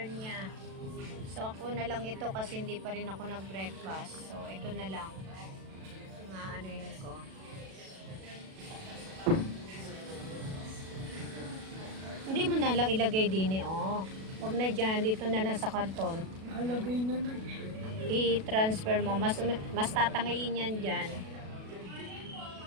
niya. So, ako na lang ito kasi hindi pa rin ako nag-breakfast. So, ito na lang. Nga, ano yun ko. Hindi mo na lang ilagay din, eh, oh. Huwag na dyan, dito na lang sa karton. Halagay na na. I-transfer mo. Mas tatangayin yan dyan.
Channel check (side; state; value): left; late; 37 ms